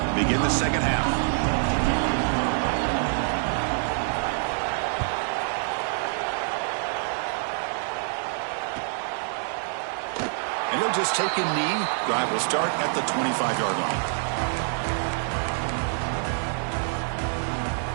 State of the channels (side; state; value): left; silent; 61 dB below the other